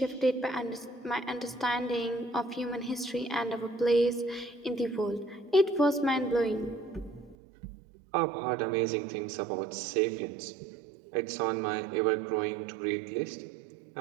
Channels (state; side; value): drops out; left; at 7.4 s